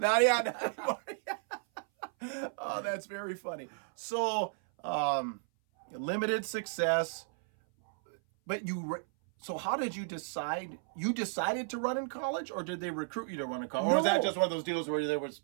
anymore. Oh, that's very funny. So, limited success, but so how did you decide? You decided to run in college, or did they recruit you to run in college? No. Or was that just one of those deals where there was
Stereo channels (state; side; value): silent; left; 55 dB below the other